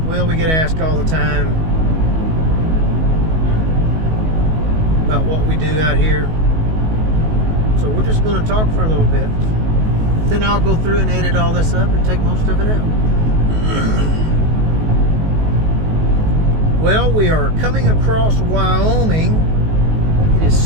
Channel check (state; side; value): late; left; 19 ms